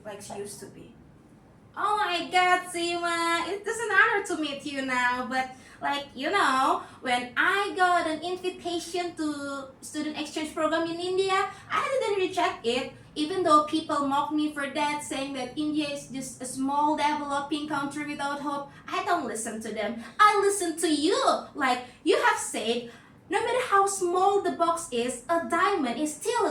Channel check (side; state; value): both; identical; correlation 1.00